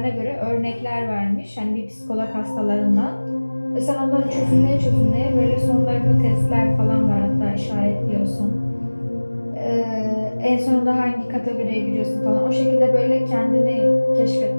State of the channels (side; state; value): both; inverted; correlation -1.00